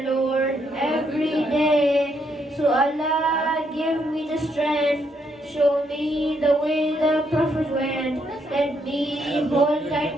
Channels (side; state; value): both; normal; correlation 0.75